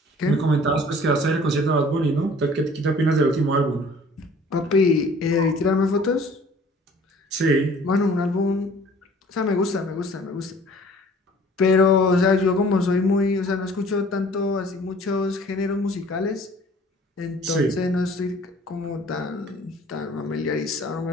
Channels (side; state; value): both; normal; correlation 0.52